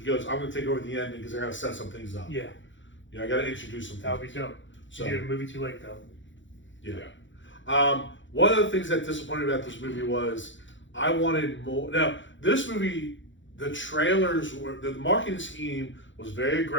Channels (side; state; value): right; late; 0.55 ms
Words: I'm going to take over the ending because I got to set some things up. Yeah. I got to introduce some things. That would be dope. So, you did a movie too late, though. Yeah. One of the things that disappointed me about this movie was I wanted more. Now, this movie, the trailers were, the marketing scheme was very